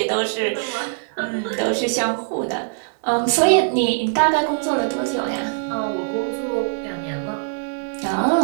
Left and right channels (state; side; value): silent; left; digital silence